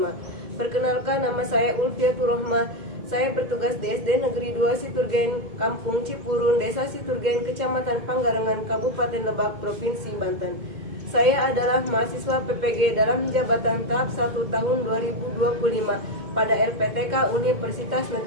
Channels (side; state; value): left; late; 2.1 ms